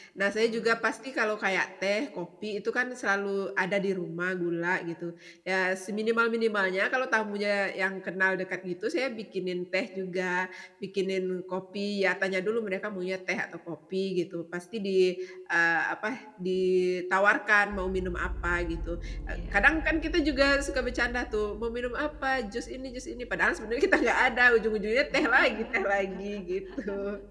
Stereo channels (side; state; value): both; identical; correlation 1.00